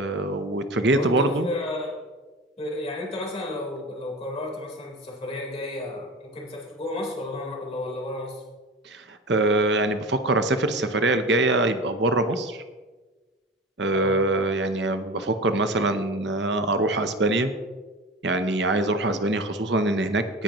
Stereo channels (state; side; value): normal; both; correlation 0.32